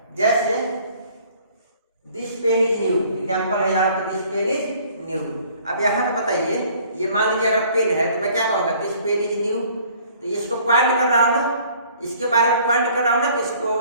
जैसे this pen is new, example है यहाँ पे, दिस पेन इज न्यू। अब यहाँ पे बताइए, ये मान लीजिए अगर पेन है तो मैं क्या कहूँगा, दिस पेन इज न्यू। तो ये इसको पॉइंट कर रहा हूँ ना, इसके बारे में पॉइंट कर रहा हूँ ना, तो इसको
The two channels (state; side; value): inverted; both; correlation -0.56